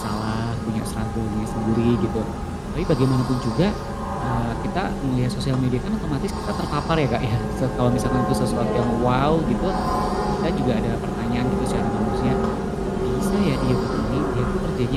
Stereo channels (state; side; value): identical; both; correlation 1.00